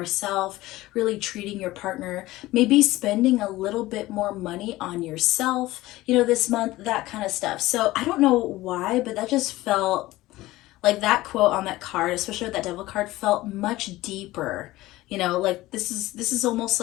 really treating your partner, maybe spending a little bit more money on yourself, you know, this month, that kind of stuff. So I don't know why, but that just felt like that quote on that card, especially with that devil card, felt much deeper. You know, like this is almost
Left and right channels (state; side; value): quieter; right; 17.7 dB